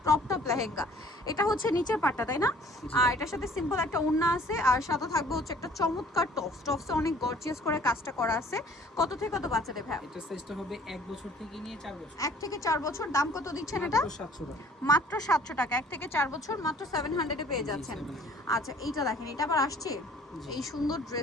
ক্রপ টপ লেহেঙ্গা। এটা হচ্ছে নিচের পাটটা, তাই না? আর এটার সাথে সিম্পল একটা ওড়না আছে, আর সাথে থাকবে হচ্ছে একটা চমৎকার টপসে অনেক গর্জিয়াস করে কাজটা করা আছে। কত থেকে কত বাচ্চাদের ভাই? এটা সাইজটা হবে 1 বছর থেকে নিয়ে 4 বছর। 1 থেকে 4 বছর। দাম কত দিচ্ছেন এটা? মাত্র 700 টাকা। 1 থেকে 4 বছর মাত্র 700 এ পেয়ে যাচ্ছেন। আচ্ছা, এইটা দেখেন, এটা আবার আসছে এই সুন্দর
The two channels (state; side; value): normal; both; correlation 0.54